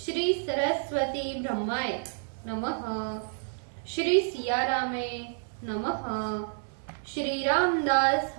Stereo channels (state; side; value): silent; left; digital silence